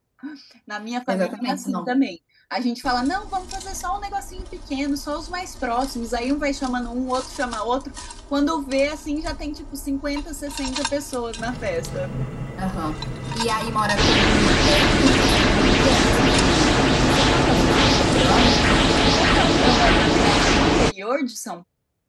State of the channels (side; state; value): both; identical; correlation 1.00